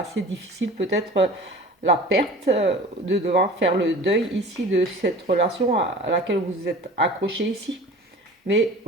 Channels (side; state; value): both; normal; correlation 0.40